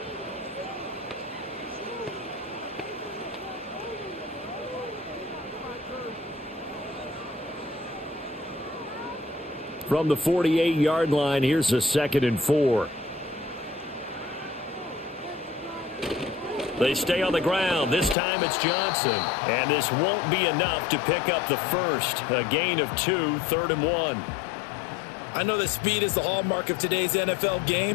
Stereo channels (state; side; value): drops out; right; at 18.2 s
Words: From the 48-yard line, here's a 2nd and 4. They stay on the ground. This time it's Johnson. And this won't be enough to pick up the first. A gain of 2, 3rd and 1. I know that speed is the hallmark of today's NFL